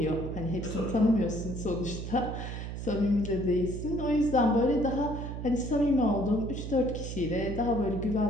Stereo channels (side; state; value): right; noise; hum, 6 dB below the sound